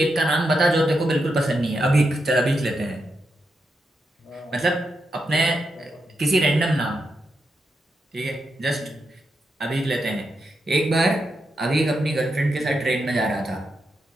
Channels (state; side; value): normal; both; correlation 0.85